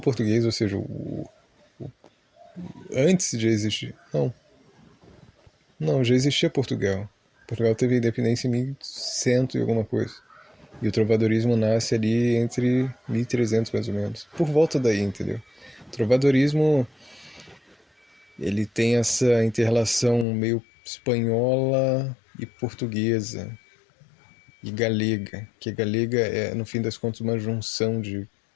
ou seja, antes de existir. Não, já existia Portugal. Portugal teve independência em 1100 e alguma coisa. E o trovadorismo nasce ali entre 1300 mais ou menos. Por volta daí, entendeu? O trovadorismo, ele tem essa inter-relação meio espanhola e portuguesa e galega, que a galega é, no fim das contas, uma junção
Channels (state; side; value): drops out; right; at 20.2 s